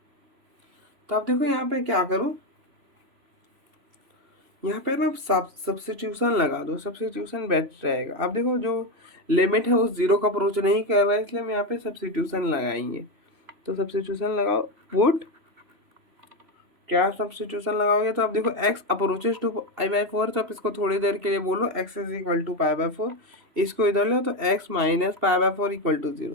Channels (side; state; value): left; late; 3.0 ms